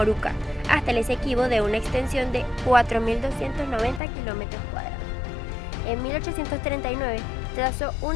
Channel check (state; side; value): drops out; right; at 4.0 s